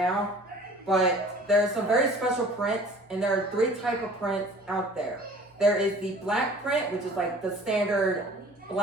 But there are some very special prints, and there are 3 types of prints out there. There is the black print, which is like the standard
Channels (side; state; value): both; normal; correlation 0.48